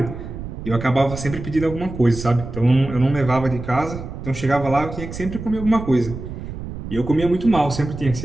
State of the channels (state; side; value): noise; right; rumble, 9 dB below the sound